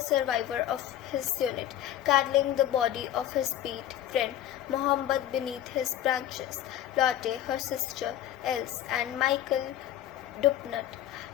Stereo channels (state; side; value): quieter; right; 11.9 dB